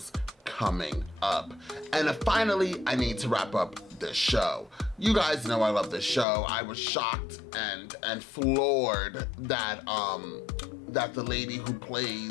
coming up. And finally, I need to wrap up this show. You guys know I love this show. I was shocked and floored that that the lady who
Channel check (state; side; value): drops out; right; at 6.2 s